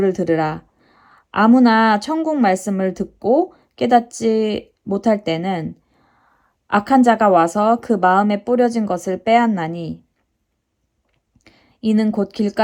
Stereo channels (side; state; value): both; identical; correlation 1.00